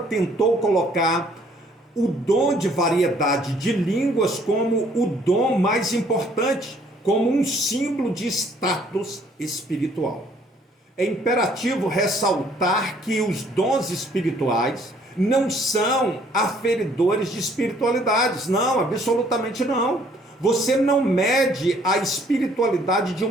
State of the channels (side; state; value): both; normal; correlation 0.62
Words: colocar o dom de variedade de línguas como o dom mais importante, como um símbolo de status espiritual. É imperativo ressaltar que os dons espirituais não são aferidores de espiritualidades, não, absolutamente não. Você não mede a espiritualidade de